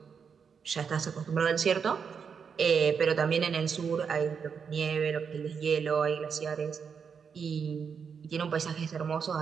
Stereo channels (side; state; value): left; quieter; 6.4 dB